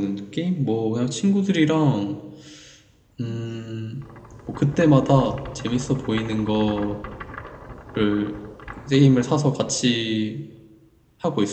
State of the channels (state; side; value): identical; both; correlation 1.00